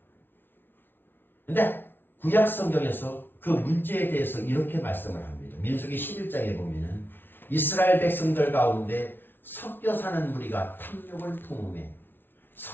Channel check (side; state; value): right; late; 0.10 ms